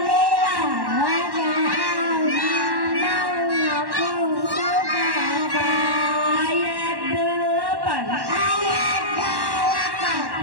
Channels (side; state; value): left; late; 1.1 ms